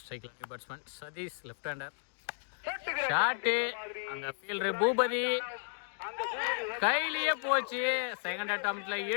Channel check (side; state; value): right; silent; digital silence